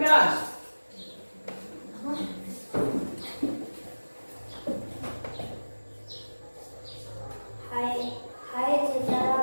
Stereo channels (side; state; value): both; inverted; correlation -1.00